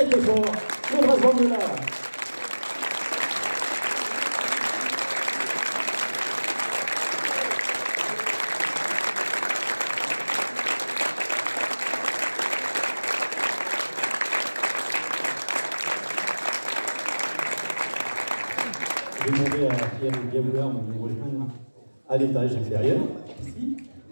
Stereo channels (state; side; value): inverted; both; correlation -1.00